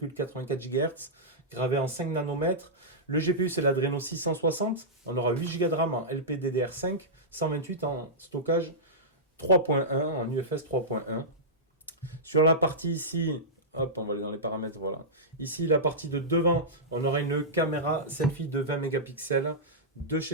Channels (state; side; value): normal; both; correlation -0.13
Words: GHz, gravé en 5 nanomètres. Le GPU, c'est l'Adreno 660. On aura 8 Go de RAM en LPDDR5, 128 en stockage 3.1, en UFS 3.1. Sur la partie ici, hop, on va aller dans les paramètres, voilà. Ici, la partie de devant, on aura une caméra selfie de 20 mégapixels de